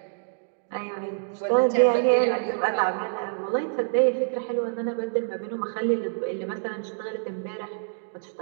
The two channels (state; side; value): silent; left; digital silence